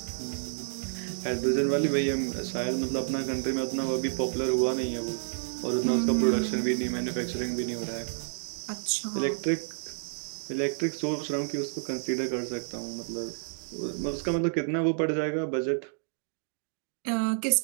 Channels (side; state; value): left; silent; digital silence